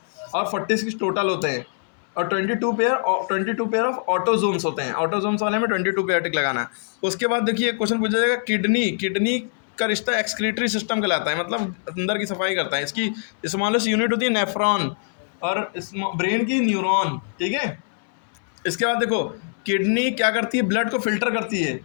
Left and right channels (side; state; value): right; silent; 63 dB below the other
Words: और 46 टोटल होते हैं। और 22 पेयर ऑफ ऑटोजोम्स होते हैं। ऑटोजोम्स वाले में 22 पेयर टिक लगाना है। उसके बाद देखिए क्वेश्चन पूछा जाएगा किडनी का रिश्ता एक्सक्रीटरी सिस्टम कहलाता है, मतलब अंदर की सफाई करता है। इसकी स्मॉलेस्ट यूनिट होती है नेफ्रॉन, और ब्रेन की न्यूरॉन, ठीक है। इसके बाद देखो किडनी क्या करती है? ब्लड को फिल्टर करती है,